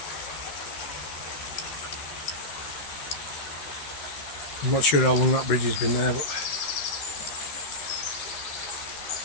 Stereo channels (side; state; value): right; late; 13 ms